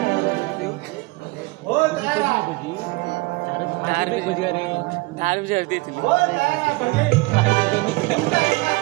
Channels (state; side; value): quieter; left; 23.4 dB